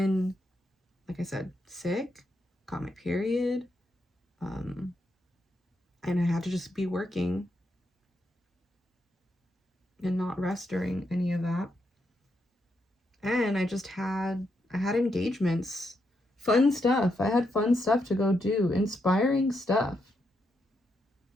like I said, sick, got my period, and I had to just be working and not rest during any of that. And I had engagements, fun stuff. I had fun stuff to go do, inspiring stuff.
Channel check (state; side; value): normal; both; correlation 0.81